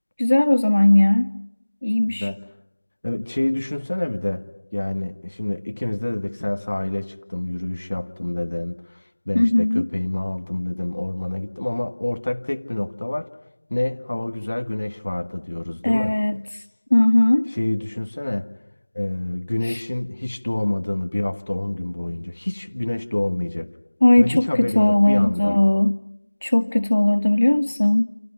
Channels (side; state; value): both; inverted; correlation -1.00